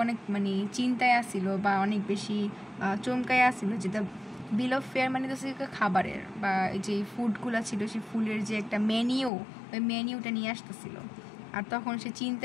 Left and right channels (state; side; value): drops out; right; at 9.3 s